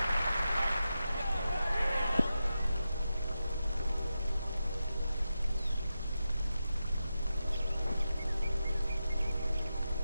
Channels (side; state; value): both; inverted; correlation -0.90